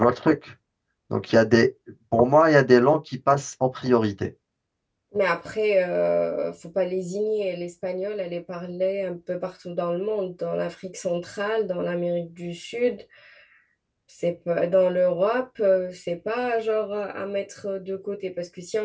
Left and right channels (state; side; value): identical; both; correlation 1.00